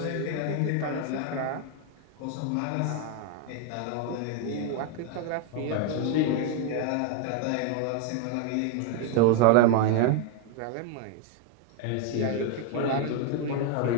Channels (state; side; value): different; both; correlation 0.00